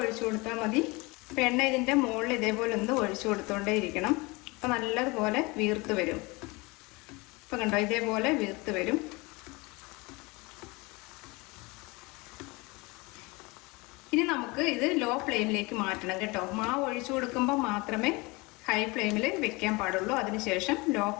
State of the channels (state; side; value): quieter; right; 25.3 dB